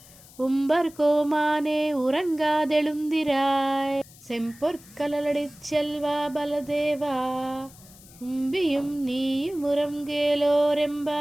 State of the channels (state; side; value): noise; left; hiss, 22 dB below the sound